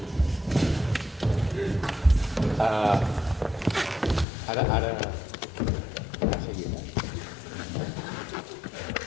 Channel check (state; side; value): drops out; right; at 4.2 s